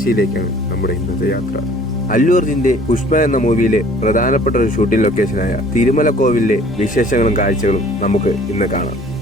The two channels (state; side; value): normal; both; correlation 0.52